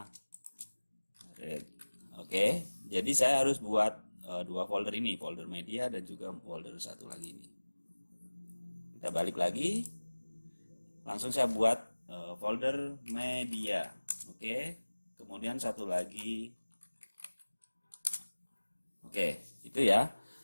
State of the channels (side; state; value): both; inverted; correlation -1.00